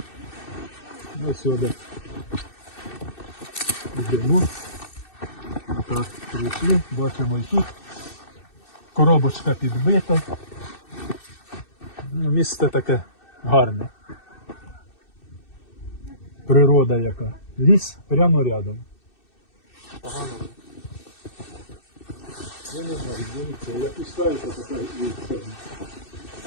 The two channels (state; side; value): late; right; 2.6 ms